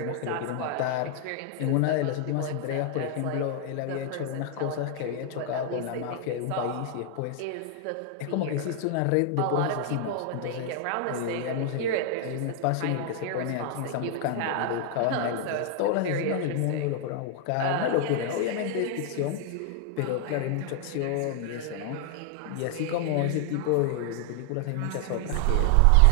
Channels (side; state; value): both; different; correlation 0.00